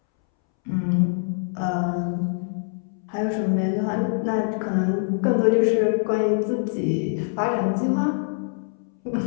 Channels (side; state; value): right; silent; 63 dB below the other